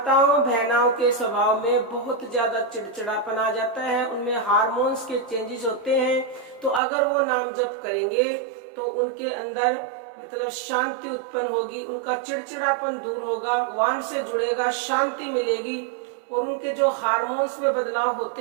बहनाओं के स्वभाव में बहुत ज्यादा चिड़चिड़ापन आ जाता है, उनमें हार्मोन्स के चेंजेस होते हैं। तो अगर वो नाम जप करेंगे तो उनके अंदर मतलब शांति उत्पन्न होगी, उनका चिड़चिड़ापन दूर होगा, भगवान से जुड़ेगा, शांति मिलेगी और उनके जो हार्मोन्स में बदलाव होते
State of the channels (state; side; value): drops out; left; at 6.8 s